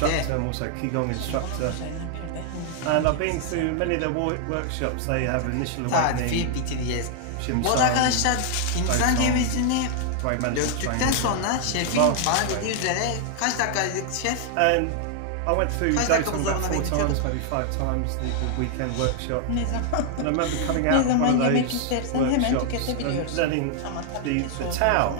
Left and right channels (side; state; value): both; different; correlation 0.00